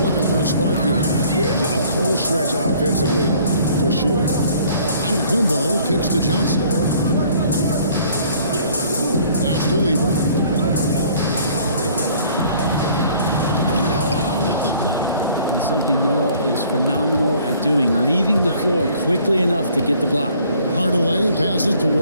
for a spark here. Yeah, a cold stretch offensively, for sure. Kumbo kicks to Johnson. Pass to Lever. And something Noah is phenomenal at doing, leaving the floor quickly enough to get the block. Hardaway passes to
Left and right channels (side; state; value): both; inverted; correlation -0.56